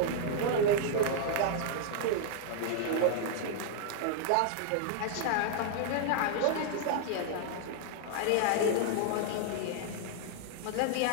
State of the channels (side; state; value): both; different; correlation -0.01